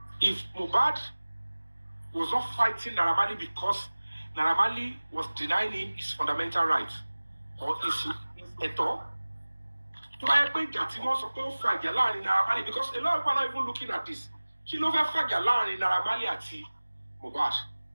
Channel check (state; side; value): inverted; both; correlation -1.00